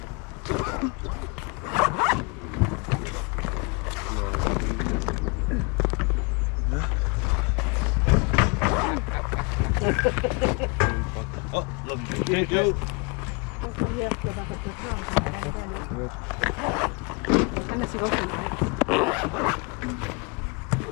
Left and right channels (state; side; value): quieter; right; 31.8 dB